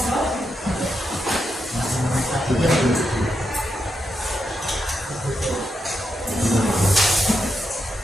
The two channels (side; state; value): both; normal; correlation 0.85